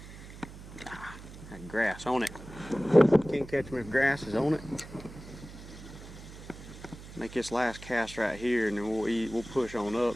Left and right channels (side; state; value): right; noise; hum, 15 dB below the sound